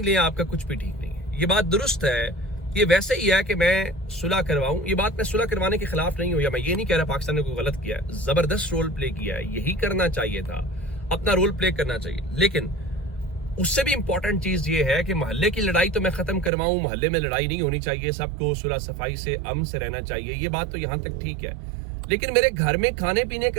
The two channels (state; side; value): drops out; left; at 16.5 s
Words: لیں آپ کا کچھ بھی ٹھیک نہیں ہے. یہ بات درست ہے. یہ ویسے ہی ہے کہ میں صلح کرواؤں, یہ بات میں صلح کروانے کے خلاف نہیں ہوں, یا میں یہ نہیں کہہ رہا پاکستان نے کوئی غلط کیا ہے, زبردست رول پلے کیا ہے, یہی کرنا چاہیے تھا, اپنا رول پلے کرنا چاہیے. لیکن اس سے بھی امپورٹنٹ چیز یہ ہے کہ محلے کی لڑائی تو میں ختم کرواؤں, محلے میں لڑائی نہیں ہونی چاہیے, سب کو صلح صفائی سے امن سے رہنا چاہیے. یہ بات تو یہاں تک ٹھیک ہے, لیکن میرے گھر میں کھانے پینے